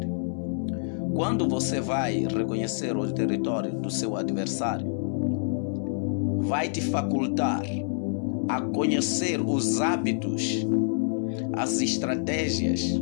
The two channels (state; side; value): silent; right; 60 dB below the other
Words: Quando você vai reconhecer o território do seu adversário, vai te facultar a conhecer os hábitos, as estratégias,